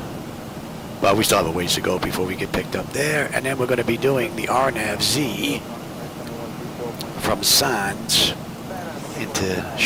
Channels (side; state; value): both; identical; correlation 1.00